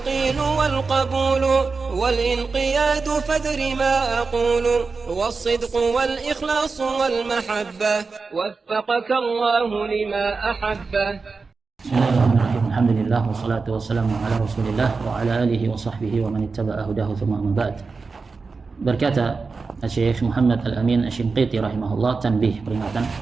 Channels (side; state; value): left; quieter; 4.4 dB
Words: والقبول والانقياد فادر ما أقول والصدق والإخلاص والمحبة وفقك الله لما أحبه. Bismillahirrahmanirrahim. Alhamdulillah wassalatu wassalamu ala Rasulillah wa ala alihi wa sahbihi wa man ittaba'a hudahu thumma amma ba'd. Berkata Syekh Muhammad Al-Amin Asy-Shinqiti rahimahullah, tanbih, peringatan.